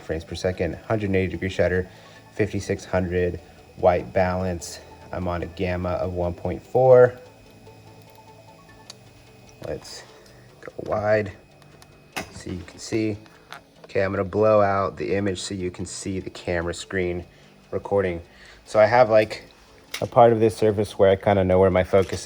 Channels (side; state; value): both; identical; correlation 1.00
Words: frames per second, 180 degree shutter, 5600 white balance. I'm on a gamma of 1.4. Let's go wide so you can see. Okay, I'm gonna blow out the image so you can see the camera screen recording. So I have like a part of this surface where I kind of know where my focus